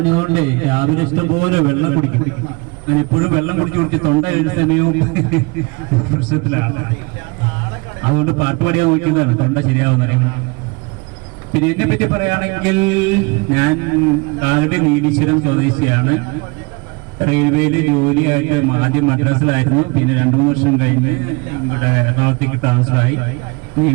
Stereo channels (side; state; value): left; quieter; 28.1 dB